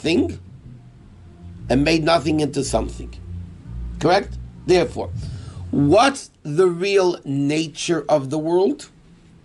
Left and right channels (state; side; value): identical; both; correlation 1.00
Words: and made nothing into something. Correct? Therefore, what's the real nature of the world?